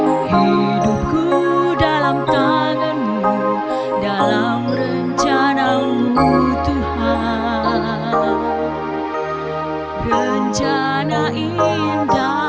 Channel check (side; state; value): both; identical; correlation 1.00